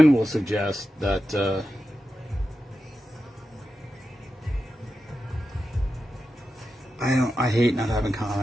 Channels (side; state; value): both; normal; correlation 0.91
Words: will suggest that I hate not having